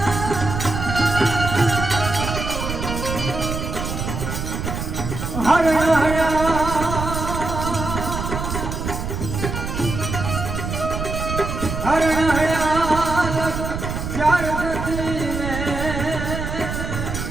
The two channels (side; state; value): right; noise; rumble, 4 dB below the sound